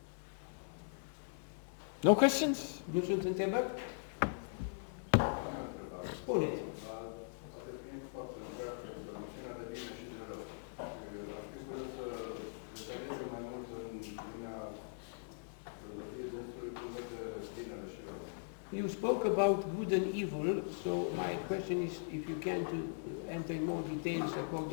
No questions? nu sunt întrebări? Spuneți. Poate fiind foarte întreagă, noțiunea de bine și de rău. Aș fi curios să detalieze mai mult în lumea filozofiei dânsului cum vede binele și rău. You spoke about good and evil, so my question is if you can to enter in more details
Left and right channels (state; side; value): silent; right; digital silence